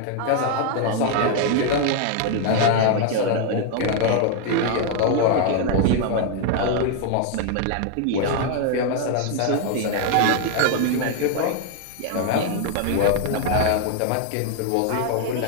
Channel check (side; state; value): both; different; correlation 0.00